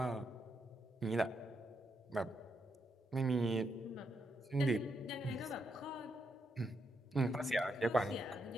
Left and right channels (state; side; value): normal; both; correlation 0.80